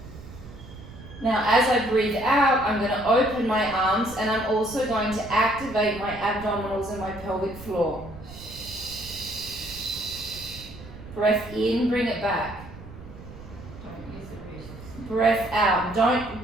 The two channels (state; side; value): noise; right; rumble, 16 dB below the sound